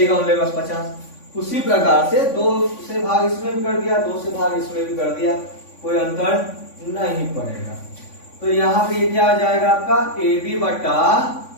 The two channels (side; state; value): right; late; 3.5 ms